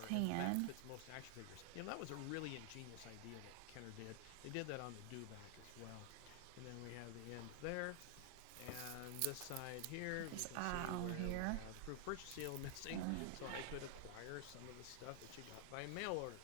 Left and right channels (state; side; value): different; both; correlation 0.00